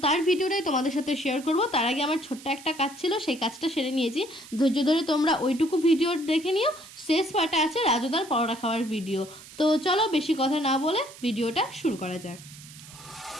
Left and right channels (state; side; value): noise; right; hiss, 18 dB below the sound